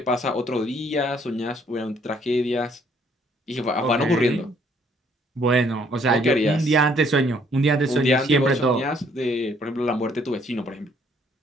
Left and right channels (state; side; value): normal; both; correlation 0.65